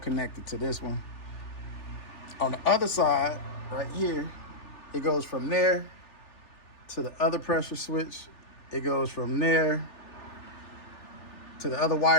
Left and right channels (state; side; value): late; right; 3.4 ms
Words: to this one. On the other side, right here, it goes from there to the other pressure switch. It goes from there to the other